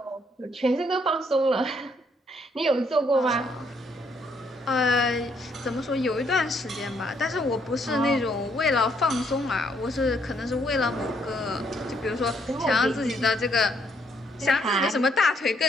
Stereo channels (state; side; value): normal; both; correlation 0.71